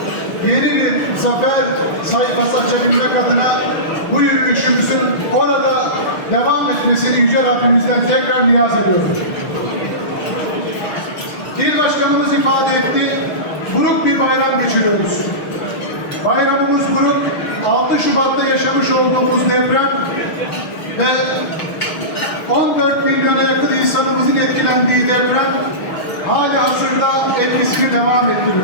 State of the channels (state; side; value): late; right; 6.5 ms